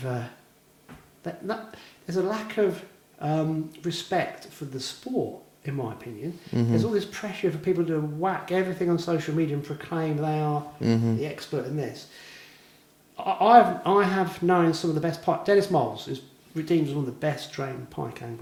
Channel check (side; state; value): both; identical; correlation 1.00